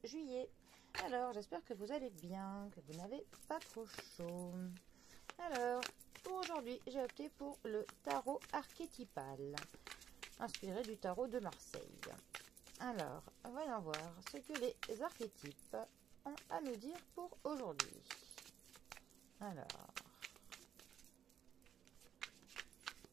juillet. Alors j'espère que vous allez bien, que vous n'avez pas trop chaud. Alors pour aujourd'hui j'ai opté pour le tarot archétypal, inspiré du tarot de Marseille. Alors voyons voir ce que les archétypes ont à nous dire pour aujourd'hui. Alors...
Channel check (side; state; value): left; quieter; 9.3 dB